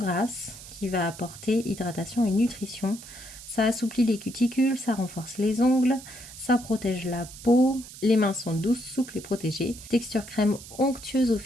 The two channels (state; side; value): noise; right; hiss, 15 dB below the sound